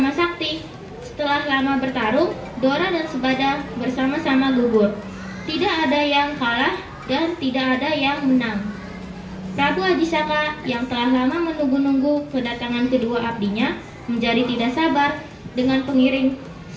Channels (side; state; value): both; identical; correlation 1.00